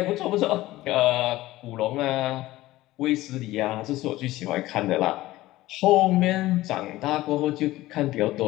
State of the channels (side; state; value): right; quieter; 17.0 dB